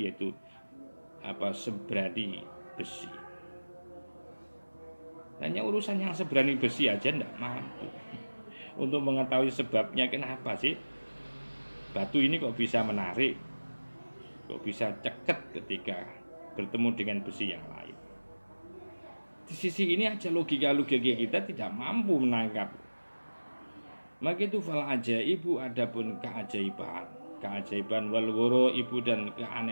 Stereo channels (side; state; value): both; inverted; correlation -1.00